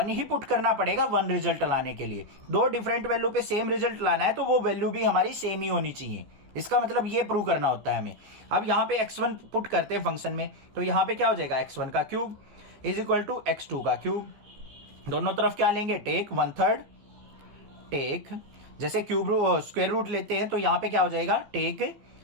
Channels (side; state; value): left; late; 15 ms